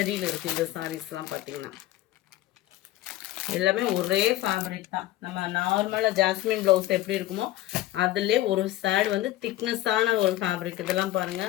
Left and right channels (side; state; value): right; quieter; 15.2 dB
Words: இருக்குது. இந்த சாரீஸ்லாம் பார்த்தீங்கன்னா எல்லாமே ஒரே ஃபேப்ரிக் தான். நம்ம நார்மலாக ஜாஸ்மின் ப்ளவுஸ் எப்படி இருக்குமோ அதிலே ஒரு சேட் வந்து திக்னஸான ஒரு ஃபேப்ரிக். இதெல்லாம்